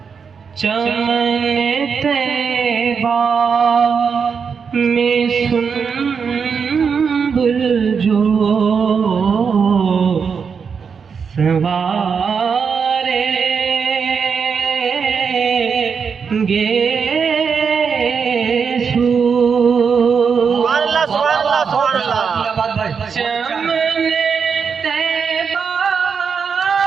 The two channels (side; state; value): left; quieter; 6.1 dB